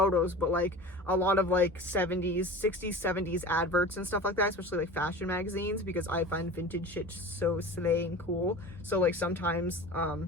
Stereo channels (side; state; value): both; normal; correlation 0.35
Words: but like a lot of like 60s, 70s adverts and stuff like that, especially like fashion magazines, because I find vintage shit so slay and cool. So like sometimes